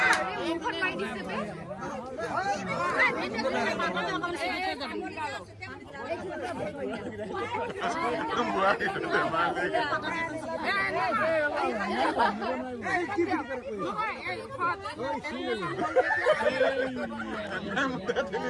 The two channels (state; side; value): identical; both; correlation 1.00